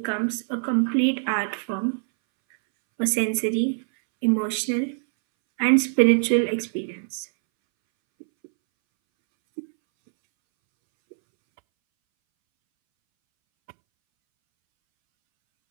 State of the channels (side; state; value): left; silent; 63 dB below the other